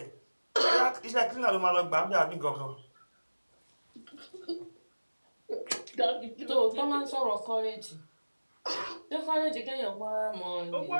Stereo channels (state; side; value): inverted; both; correlation -1.00